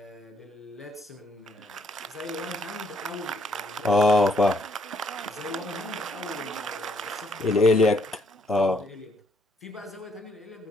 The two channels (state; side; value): normal; both; correlation 0.70